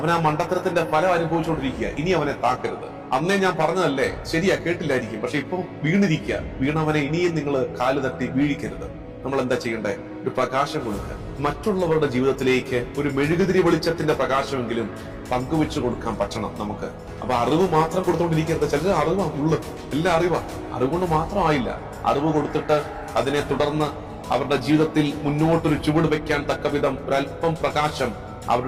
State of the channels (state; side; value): identical; both; correlation 1.00